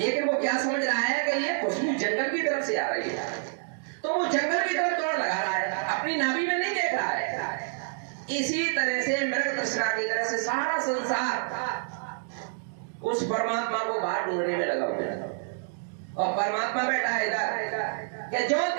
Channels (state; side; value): silent; left; digital silence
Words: वो क्या समझ रहा है कि ये खुशबू जंगल की तरफ से आ रही है, तो वो जंगल की तरफ दौड़ लगा रहा है, अपनी नाभि में नहीं देख रहा है। इसी तरह से मृग तृष्णा की तरह से सारा संसार उस परमात्मा को बाहर ढूंढने में लगा हुआ है। और परमात्मा बैठा है इधर कि जो